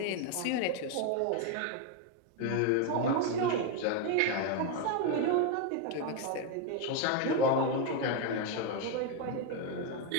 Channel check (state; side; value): different; both; correlation 0.01